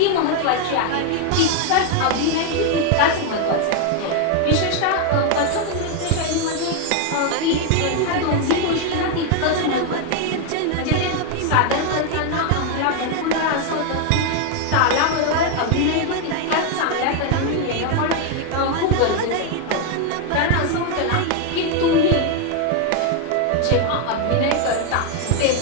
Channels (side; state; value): both; different; correlation 0.01